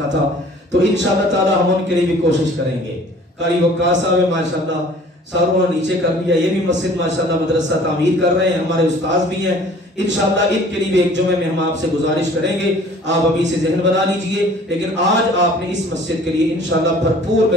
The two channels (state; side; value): normal; both; correlation 0.50